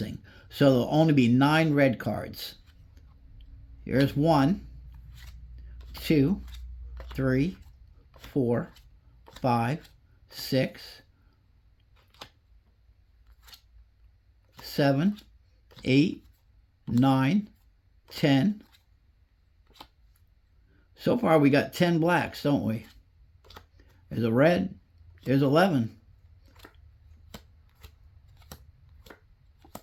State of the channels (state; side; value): identical; both; correlation 1.00